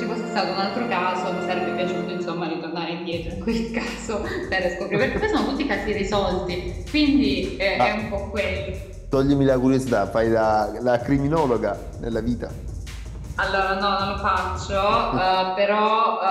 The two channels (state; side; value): identical; both; correlation 1.00